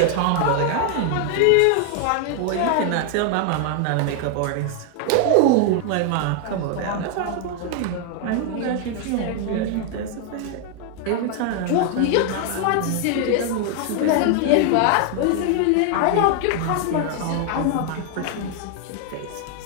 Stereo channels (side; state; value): both; different; correlation 0.00